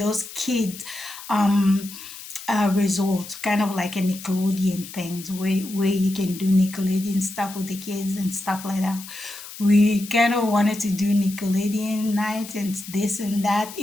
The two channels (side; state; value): left; noise; hiss, 14 dB below the sound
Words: kids resort, kind of like a Nickelodeon things where you can do Nickelodeon stuff with the kids and stuff like that. We kind of wanted to do Nickelodeon night and this and that.